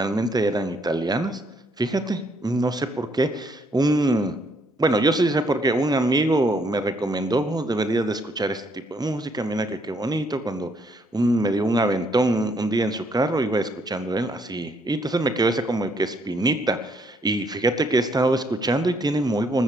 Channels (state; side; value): normal; both; correlation 0.70